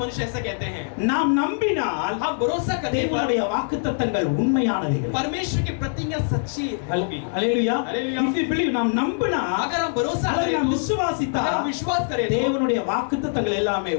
मनुष्य ऐसा कहते हैं நாம் நம்பினால் हम भरोसा करने पर தேவனுடைய வாக்குத்தத்தங்கள் உண்மையானவைகள் परमेश्वर की प्रतिज्ञा सच्ची होगी। அல்லேலூயா हालेलुया। if you believe நாம் நம்பினா अगर हम भरोसा அதை करें நாம் तो விசுவாசித்தா अगर हम विश्वास करें तो தேவனுடைய வாக்குத்தத்தங்கள் எல்லாமே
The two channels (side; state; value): right; silent; 63 dB below the other